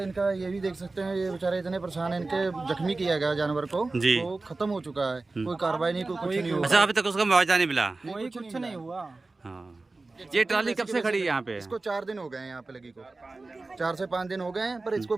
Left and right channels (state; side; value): quieter; left; 3.4 dB